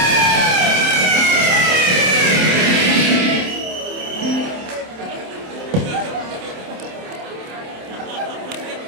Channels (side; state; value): left; late; 27 ms